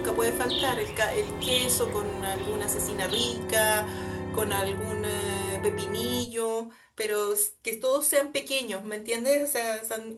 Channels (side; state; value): both; identical; correlation 1.00